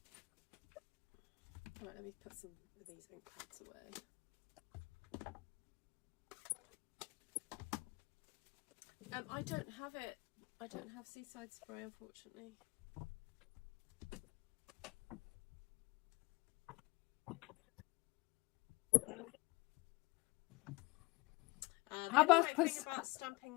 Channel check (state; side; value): quieter; right; 24.0 dB